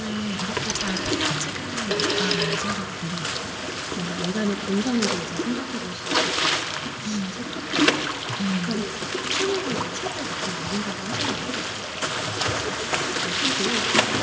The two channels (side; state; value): both; identical; correlation 1.00